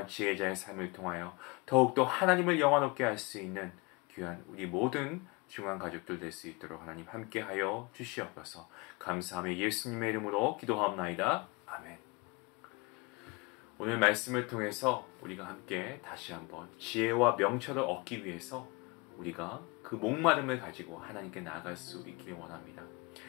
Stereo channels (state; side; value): quieter; right; 26.4 dB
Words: 지혜자의 삶을 통하여 더욱더 하나님을 영화롭게 할 수 있는 귀한 우리 모든 중한 가족들 될 수 있도록 하나님 함께하여 주시옵소서. 감사하며 예수님의 이름으로 기도하옵나이다. 아멘. 오늘 말씀을 통해서 우리가 함께 다시 한번 지혜와 명철을 얻기 위해서 우리가 그 목마름을 가지고 하나님께 나아갈 수 있기를 원합니다.